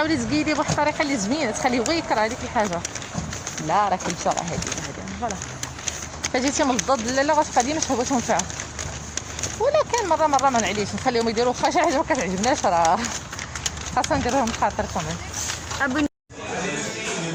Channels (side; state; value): both; identical; correlation 1.00